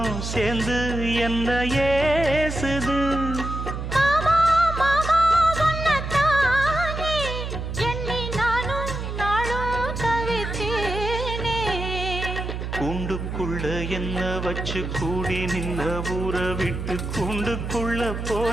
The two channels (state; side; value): noise; right; hum, 5 dB below the sound